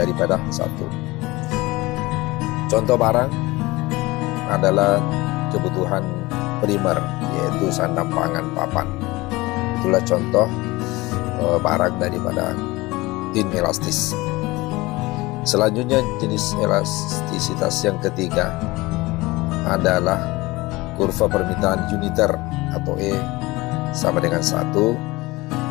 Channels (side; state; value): right; quieter; 21.3 dB